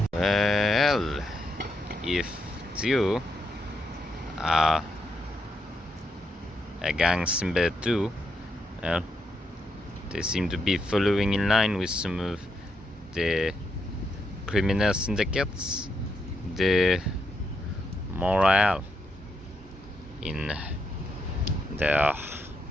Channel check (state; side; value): normal; both; correlation 0.81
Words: Well, if you are a gang member too, well, they seem to be following in line with some of the criminal syndicates, the morale in their